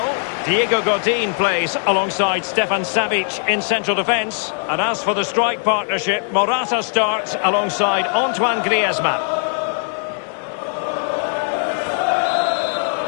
Diego Godin plays alongside Stefan Savic in central defence. And as for the strike partnership, Morata starts alongside Antoine Griezmann.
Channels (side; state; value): right; silent; 66 dB below the other